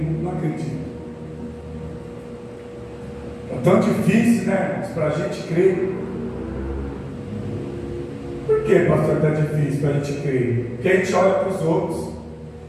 não acredito. É tão difícil, né, para a gente crer. Por que, pastor, está difícil para a gente crer? Porque a gente olha para os outros.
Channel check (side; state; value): both; identical; correlation 1.00